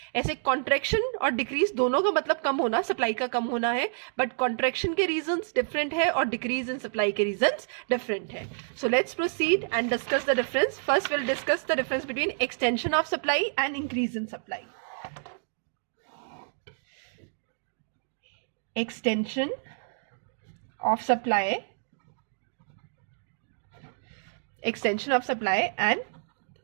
ऐसे कॉन्ट्रैक्शन और डिक्रीज दोनों का मतलब कम होना, सप्लाई का कम होना है, बट कॉन्ट्रैक्शन के रीजन डिफरेंट है और डिक्रीज इन सप्लाई के रीजन डिफरेंट है. So let's proceed and discuss the difference. First will discuss the difference between extension of supply and increase in supply. Extension of supply and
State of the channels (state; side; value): silent; left; digital silence